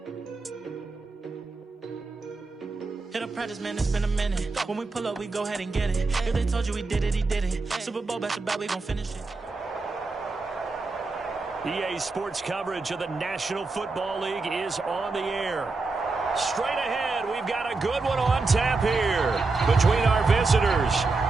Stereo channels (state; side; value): quieter; left; 3.8 dB